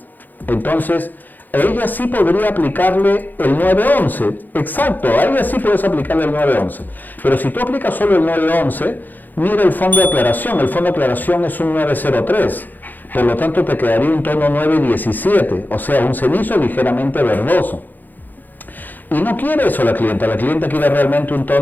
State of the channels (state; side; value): late; right; 0.086 ms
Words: Entonces, a ella sí podría aplicarle el 911. Exacto, a ella sí puedes aplicarle el 911. Pero si tú aplicas solo el 911, mira el fondo de aclaración. El fondo de aclaración es un 903. Por lo tanto, te quedaría un tono 917, o sea, un cenizo ligeramente verdoso. Y no quiere eso la clienta quiere realmente un